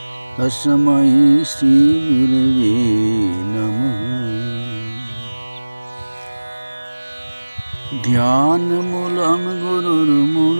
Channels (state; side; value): inverted; both; correlation -1.00